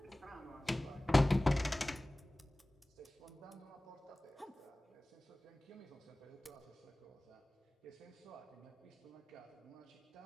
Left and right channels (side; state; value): both; normal; correlation 0.98